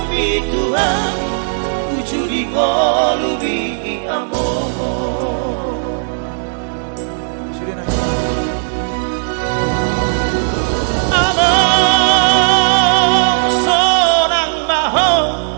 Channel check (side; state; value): left; silent; 68 dB below the other